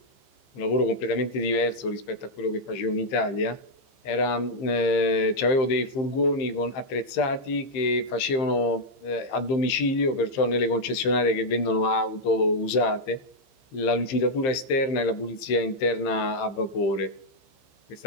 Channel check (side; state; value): right; late; 15 ms